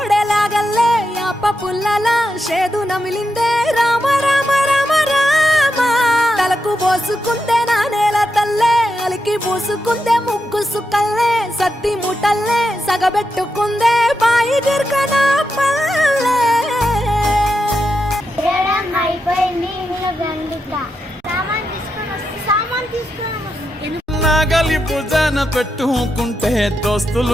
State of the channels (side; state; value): both; normal; correlation 0.86